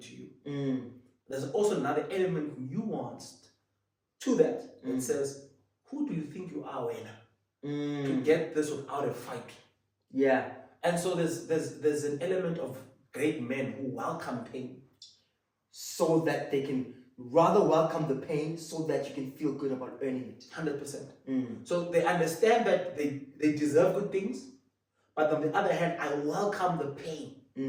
you. There's also another element nuanced to that says, who do you think you are, Wena, to get this without a fight? Yeah. And so there's an element of great men who welcome pain, so that they can rather welcome the pain, so that you can feel good about earning it. 100%. So they understand that they deserve good things, but on the other hand, I welcome the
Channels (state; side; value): identical; both; correlation 1.00